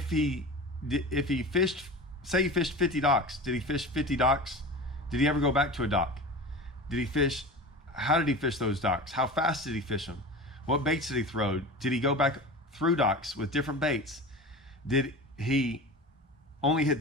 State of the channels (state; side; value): normal; both; correlation 0.32